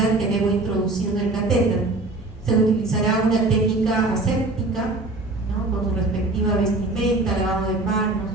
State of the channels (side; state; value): left; quieter; 3.0 dB